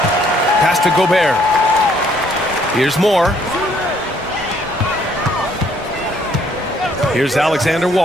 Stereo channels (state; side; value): normal; both; correlation 0.65